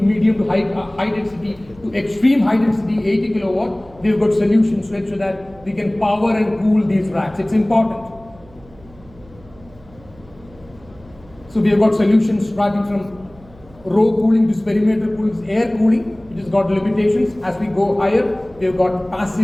to high density to extreme high density, 80 kilowatt, we've got solutions to ensure that we can power and cool these racks. It's important. So we have got solutions starting from row cooling to perimeter cooling, air cooling, which has got limitations. As we go higher, we have got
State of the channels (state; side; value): noise; right; hum, 25 dB below the sound